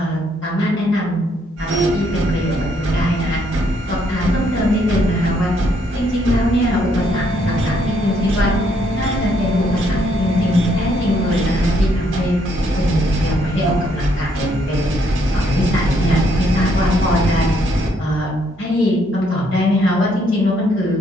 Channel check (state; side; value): normal; both; correlation 0.70